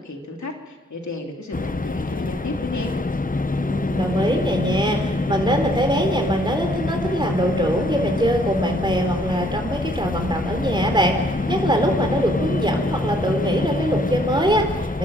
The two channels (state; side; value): normal; both; correlation 0.65